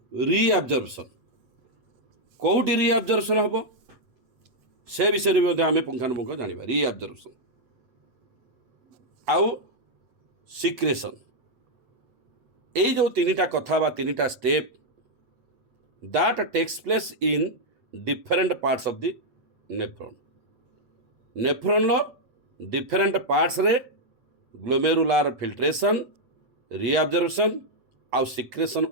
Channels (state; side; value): late; left; 8.1 ms